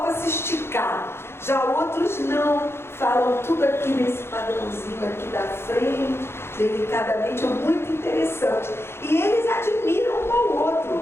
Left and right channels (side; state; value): right; late; 0.12 ms